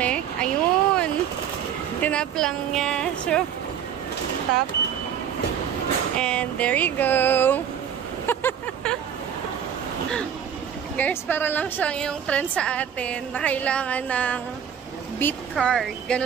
Ayun. Tinap lang niya. So, tap. And there you go. Guys, para lang siyang yung trend sa atin na kailangan ng beat card.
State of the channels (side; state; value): left; quieter; 8.7 dB